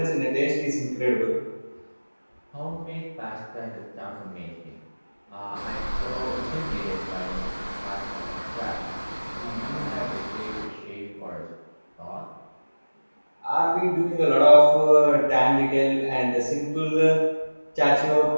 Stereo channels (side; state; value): both; inverted; correlation -1.00